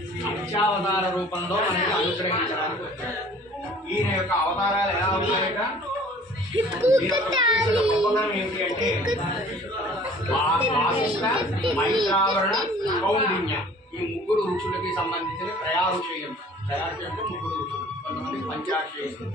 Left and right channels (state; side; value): normal; both; correlation 0.50